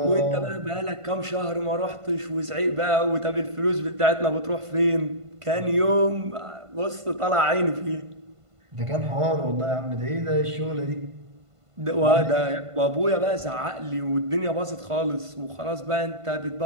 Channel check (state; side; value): late; left; 1.5 ms